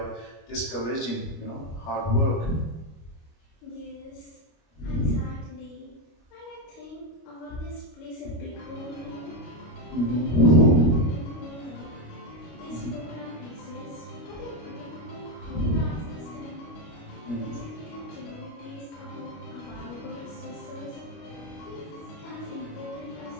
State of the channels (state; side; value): late; right; 25 ms